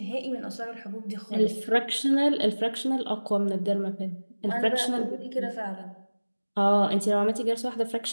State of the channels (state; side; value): inverted; both; correlation -1.00